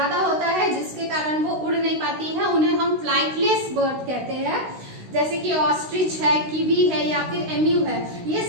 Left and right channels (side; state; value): left; late; 16 ms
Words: होता है जिसके कारण वो उड़ नहीं पाती हैं। उन्हें हम फ्लाइटलेस बर्ड कहते हैं, जैसे कि ऑस्ट्रिच है, कीवी है या फिर एम्यू है, ये